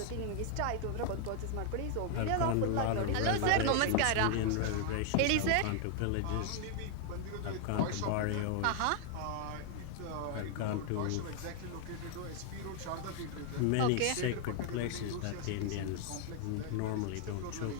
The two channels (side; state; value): both; different; correlation 0.00